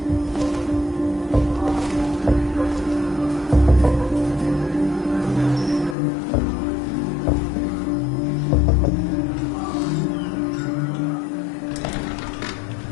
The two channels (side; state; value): right; drops out; at 6.0 s